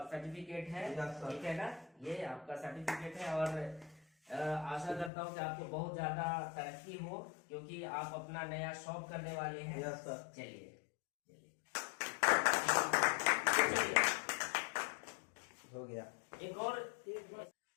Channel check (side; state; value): right; drops out; at 5.1 s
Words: सर्टिफिकेट है, Yes, sir. ठीक है ना? ये आपका सर्टिफिकेट है और आशा करता हूँ कि आपको बहुत ज्यादा तरक्की हो क्योंकि आप अपना नया शॉप करने वाले हैं। Yes sir. चलिए हो गया। एक और